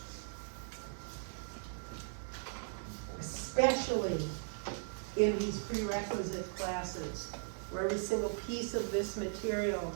especially in these prerequisite classes, where every single piece of this material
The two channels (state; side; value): silent; left; digital silence